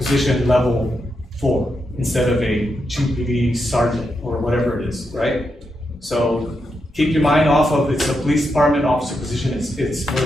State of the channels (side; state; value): both; normal; correlation 0.84